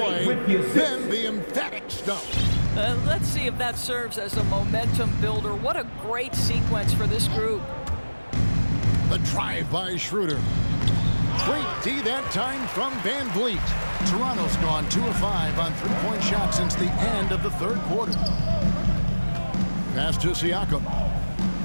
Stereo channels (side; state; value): both; inverted; correlation -1.00